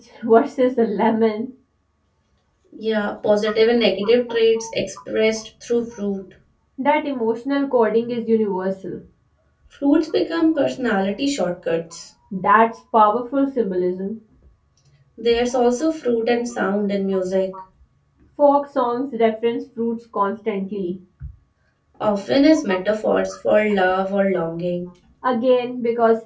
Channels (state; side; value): identical; both; correlation 1.00